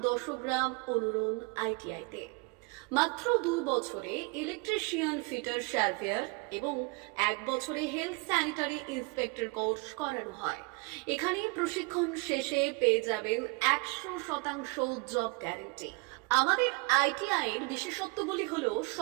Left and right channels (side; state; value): left; quieter; 27.7 dB